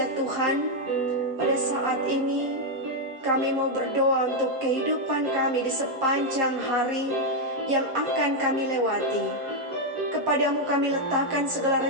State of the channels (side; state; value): left; late; 7.5 ms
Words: Tuhan, pada saat ini kami mau berdoa untuk kehidupan kami di sepanjang hari yang akan kami lewati. Kepadamu kami letakkan segala